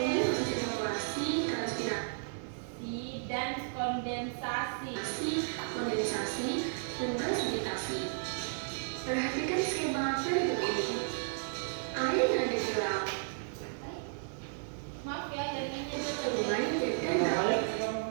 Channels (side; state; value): left; silent; 55 dB below the other